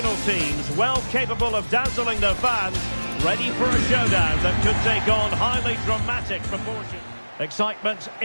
teams, well capable of dazzling their fans, ready for a showdown that could take on highly dramatic proportions. Excitement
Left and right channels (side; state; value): both; inverted; correlation -1.00